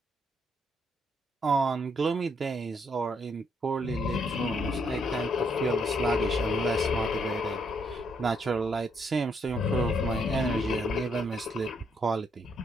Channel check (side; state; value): both; normal; correlation 0.73